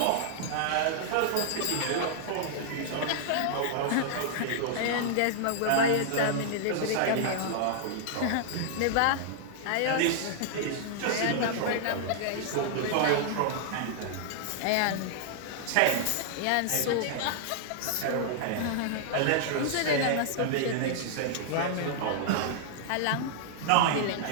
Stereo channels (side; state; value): both; different; correlation -0.01